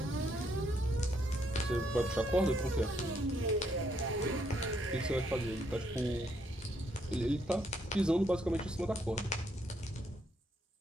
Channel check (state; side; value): normal; both; correlation 0.73